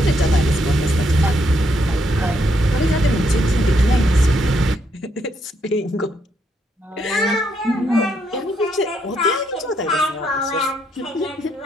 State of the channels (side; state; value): both; normal; correlation 0.75